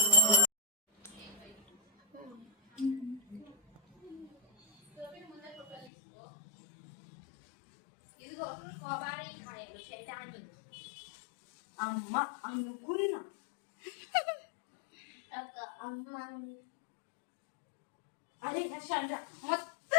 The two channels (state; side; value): drops out; right; at 5.9 s